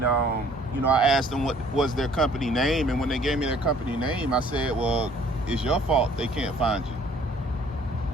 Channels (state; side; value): normal; both; correlation 0.57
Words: I asked them what was their company name, and when they gave me their company name, I said, well, it's your fault they can't find you.